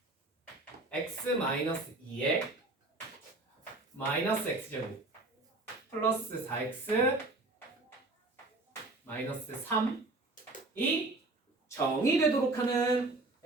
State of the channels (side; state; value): left; quieter; 3.1 dB